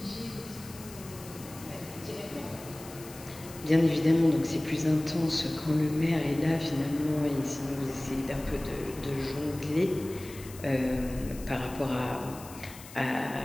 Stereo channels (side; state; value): left; noise; hiss, 17 dB below the sound